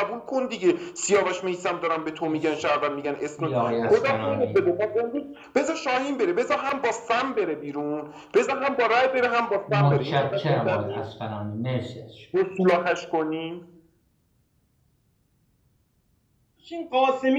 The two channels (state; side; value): identical; both; correlation 1.00